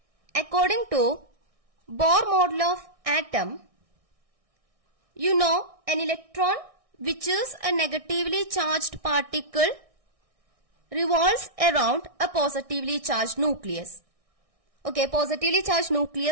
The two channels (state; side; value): late; left; 1.6 ms